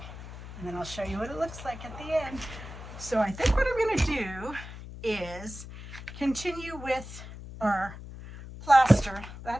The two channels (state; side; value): noise; left; hum, 13 dB below the sound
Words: and then I'll show you what it looks like at the end. So I think what I'm going to do is continue with our plaster.